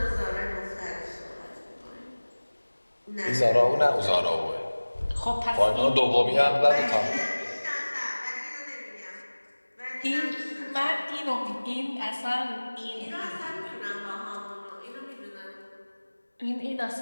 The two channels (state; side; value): inverted; both; correlation -1.00